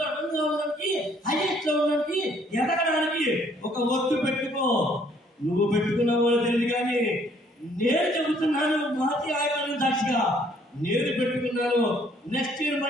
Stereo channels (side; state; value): both; normal; correlation 0.63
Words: 1 గా ఉండడానికి, హైయెస్ట్ లో ఉండడానికి, ఎదగడానికి ఒక ఒట్టు పెట్టుకో. నువ్వు పెట్టుకున్నావో తెలియదు కానీ నేను చెబుతున్నాను, మాతి ఆయుధాలను సాక్షిగా నేను పెట్టుకున్నాను. నెక్స్ట్ ఇయర్